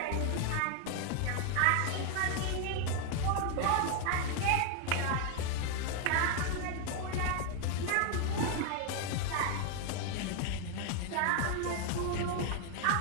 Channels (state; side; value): different; both; correlation 0.00